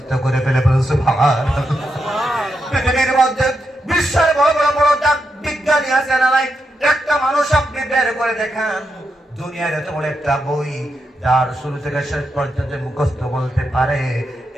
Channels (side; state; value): both; normal; correlation 0.84